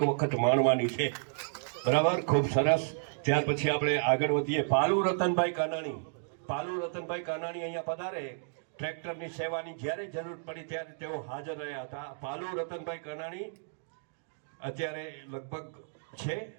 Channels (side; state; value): left; silent; digital silence